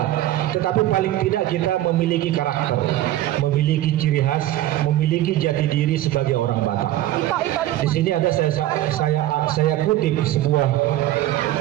Tetapi paling tidak kita memiliki karakter, memiliki ciri khas, memiliki jati diri sebagai orang Batak. Di sini ada saya kutip sebuah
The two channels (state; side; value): quieter; left; 14.2 dB